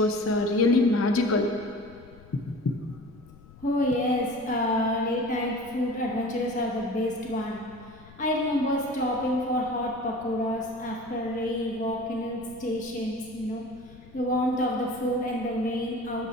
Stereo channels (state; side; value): noise; left; rumble, 22 dB below the sound